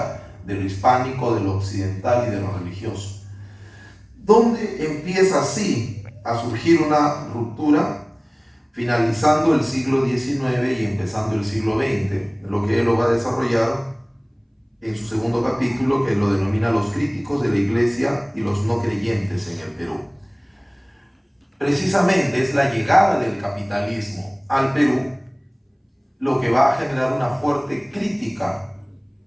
de lo hispánico, de lo occidental y de lo religioso. ¿Dónde empieza así a surgir una ruptura? Finalizando el siglo XIX y empezando el siglo XX. Lo que él lo va a desarrollar en su segundo capítulo, que lo denomina Los críticos de la Iglesia y los no creyentes en el Perú. Precisamente es la llegada del capitalismo al Perú lo que va a generar una fuerte crítica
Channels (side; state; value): both; identical; correlation 1.00